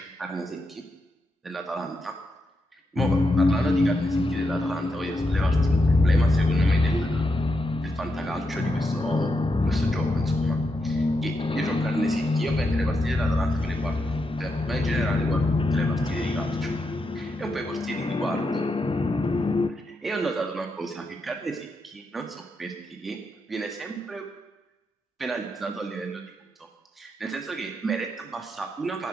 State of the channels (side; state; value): both; normal; correlation 0.84